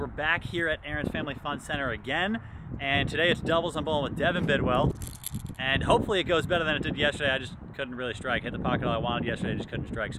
back here at Aaron's Family Fun Center again, and today it's doubles. I'm bowling with Devin Bidwell, and hopefully it goes better than it did yesterday. I just couldn't really strike. Hit the pocket all I wanted yesterday, just couldn't strike.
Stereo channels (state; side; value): identical; both; correlation 1.00